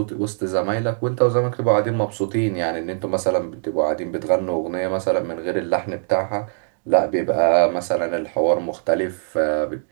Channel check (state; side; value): silent; left; digital silence